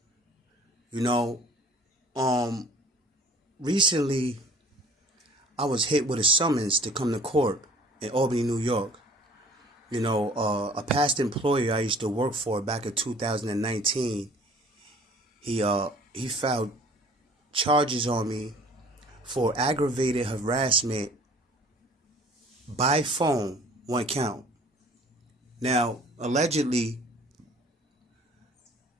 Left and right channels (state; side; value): normal; both; correlation 0.51